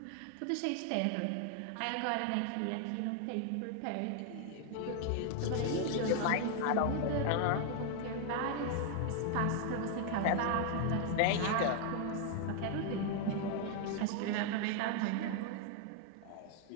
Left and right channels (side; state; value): both; different; correlation 0.00